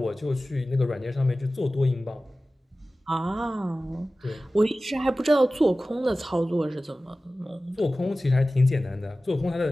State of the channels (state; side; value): normal; both; correlation 0.96